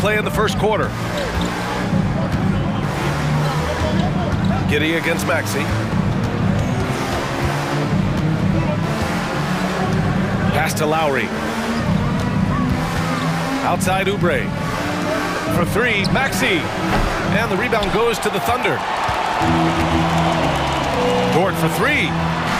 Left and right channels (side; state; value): both; identical; correlation 1.00